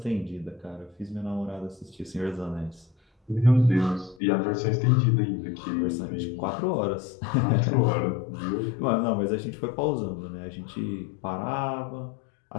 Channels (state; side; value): drops out; right; at 4.2 s